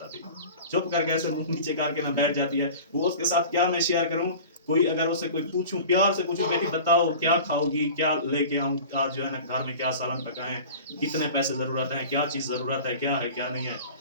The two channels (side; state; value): both; inverted; correlation -0.38